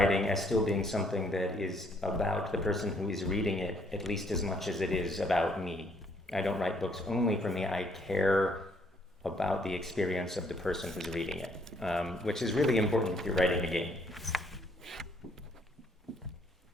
as still being something that is about the person who is reading it at least as much as it is about me. I don't write books only for me. I care about the experience of the person who's reading it, which is really important if you're writing a game.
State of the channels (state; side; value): normal; both; correlation 0.67